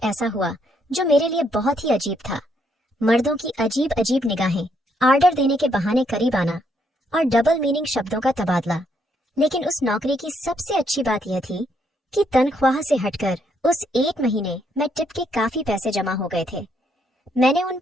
ऐसा हुआ जो मेरे लिए बहुत ही अजीब था। मर्दों की अजीब अजीब निगाहें, आर्डर देने के बहाने करीब आना और डबल मीनिंग शब्दों का तबादला। लेकिन उस नौकरी की सबसे अच्छी बात यह थी कि तनख्वाह से हटकर उस 1 महीने में टिप के काफी पैसे जमा हो गए थे। मैंने उन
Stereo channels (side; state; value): both; normal; correlation 0.73